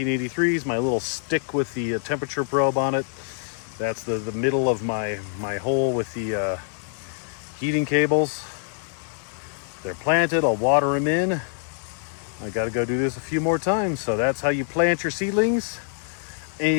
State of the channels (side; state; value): right; silent; digital silence